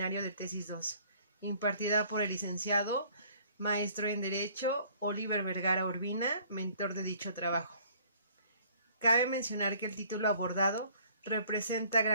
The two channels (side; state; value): both; inverted; correlation -0.57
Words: de Tesis 2, impartida por el licenciado maestro en Derecho Oliver Vergara Urbina, mentor de dicho trabajo. Cabe mencionar que el título abordado representa